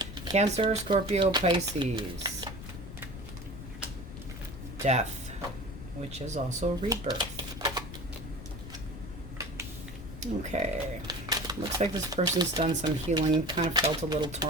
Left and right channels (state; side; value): noise; left; rumble, 11 dB below the sound